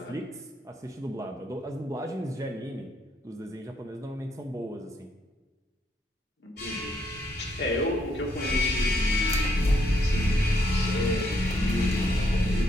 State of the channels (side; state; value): both; normal; correlation 0.74